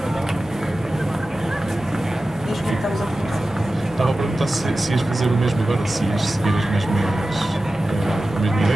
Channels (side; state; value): both; normal; correlation 0.95